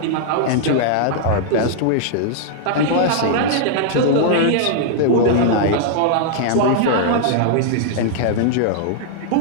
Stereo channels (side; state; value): both; different; correlation -0.01